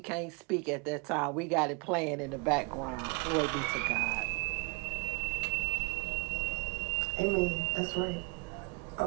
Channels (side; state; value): left; quieter; 29.2 dB